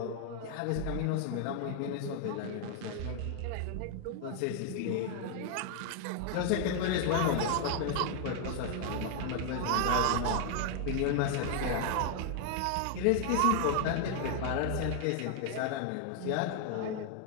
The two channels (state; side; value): different; both; correlation 0.00